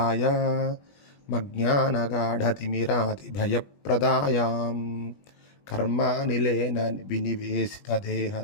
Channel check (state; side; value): late; right; 20 ms